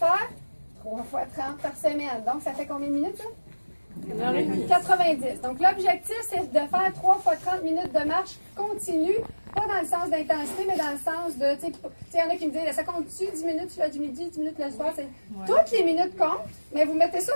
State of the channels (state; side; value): inverted; both; correlation -1.00